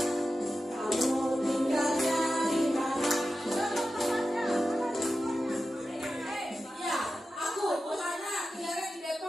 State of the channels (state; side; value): normal; both; correlation 0.92